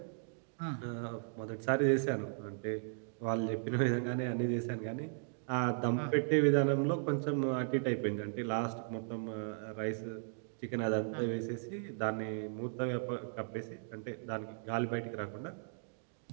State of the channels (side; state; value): left; silent; digital silence